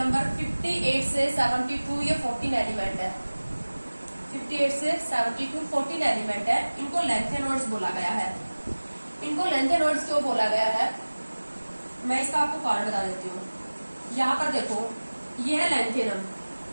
58 से 72, ये 14 एलिमेंट है। 58 से 72 14 एलिमेंट है। इनको लेंथेनॉइड्स बोला गया है। इनको लेंथेनॉइड्स क्यों बोला गया है, मैं इसका आपको कारण बता देती हूँ। यहाँ पर देखो ये है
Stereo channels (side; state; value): both; inverted; correlation -1.00